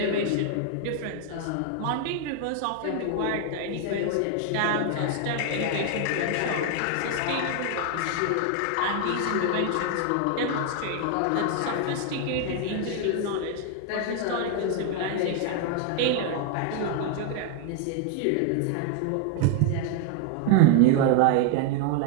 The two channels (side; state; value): both; different; correlation 0.00